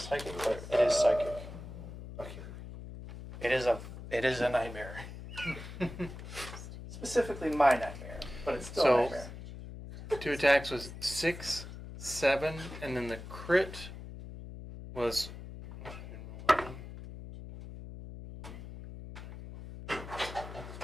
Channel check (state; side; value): noise; left; hum, 12 dB below the sound